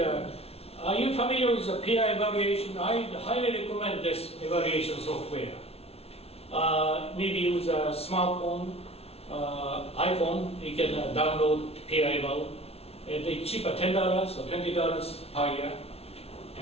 you familiar with the peer evaluation? I highly recommend this evaluation software. Maybe use a smartphone, iPhone, you can download peer eval. It's cheaper, $10 or $20 per year.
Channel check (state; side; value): late; right; 0.30 ms